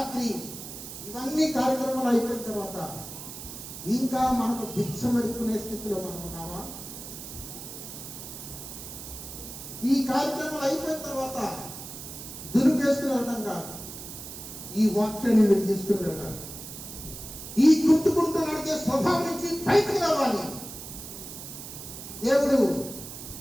ఇవన్నీ కార్యక్రమాలు అయిపోయిన తర్వాత ఇంకా మనకు భిక్షం ఎడుకునే స్థితిలో మనం ఉన్నామా? ఈ కార్యక్రమాలు అయిపోయిన తర్వాత దురుపేసుకుని వెళ్ళడం కాదు, ఈ వాక్యాన్ని మీరు తీసుకుని వెళ్ళాలి. ఈ కుంటుకుంటూ నడిచే స్వభావం నుంచి బయటకు రావాలి. దేవుడు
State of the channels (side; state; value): right; noise; hiss, 11 dB below the sound